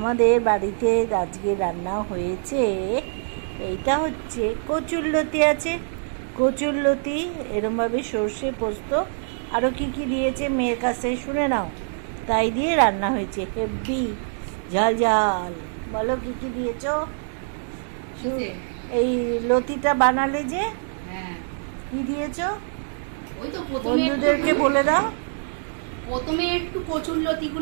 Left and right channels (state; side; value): silent; left; digital silence